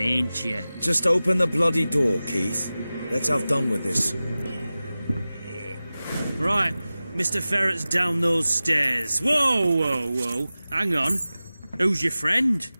you? Just open the bloody door, Keith. Let's have done with this. Right, Mr. Ferret's down those stairs. Whoa, whoa, whoa. Hang on. Who's your friend?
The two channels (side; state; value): both; inverted; correlation -0.96